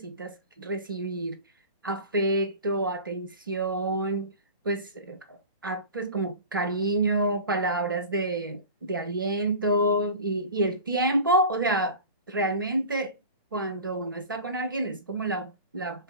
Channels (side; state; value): both; inverted; correlation -0.35